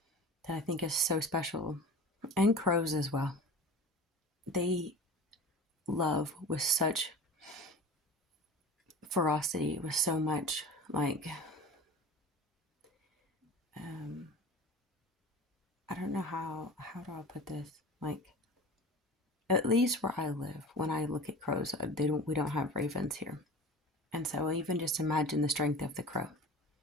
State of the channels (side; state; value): both; normal; correlation 0.36